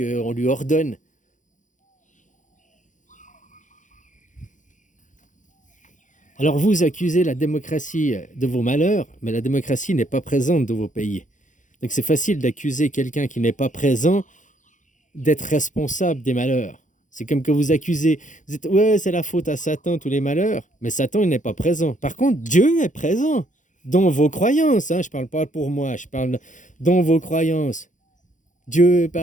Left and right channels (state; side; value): late; right; 0.37 ms